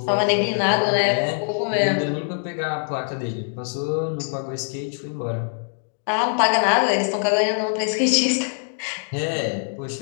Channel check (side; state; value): right; silent; digital silence